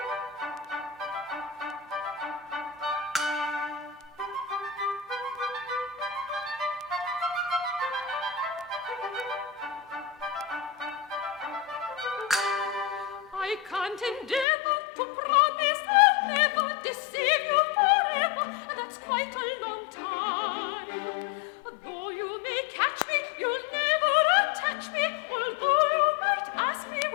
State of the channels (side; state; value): right; drops out; at 14.5 s